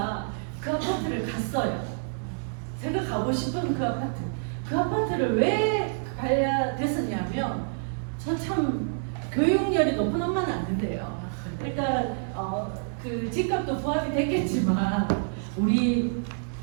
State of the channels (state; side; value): silent; left; digital silence